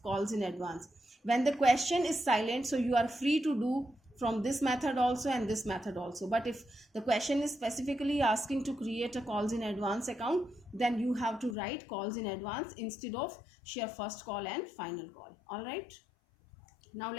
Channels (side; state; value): right; drops out; at 11.6 s